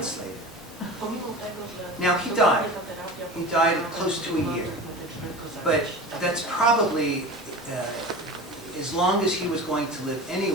later. Now, he died. He died close to a year. But that's probably as long as he was going to live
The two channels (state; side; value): normal; both; correlation 0.33